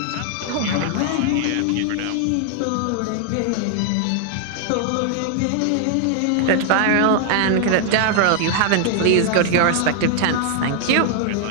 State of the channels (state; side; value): different; both; correlation 0.00